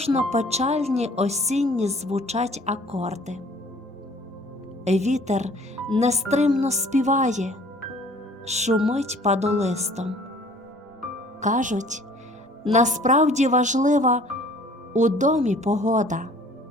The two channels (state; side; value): normal; both; correlation 0.53